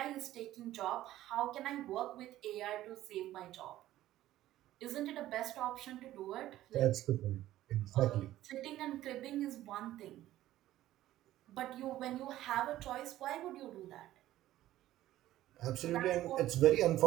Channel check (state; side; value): quieter; left; 14.3 dB